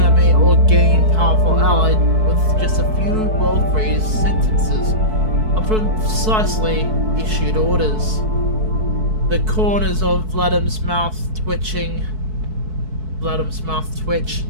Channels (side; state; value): left; late; 4.6 ms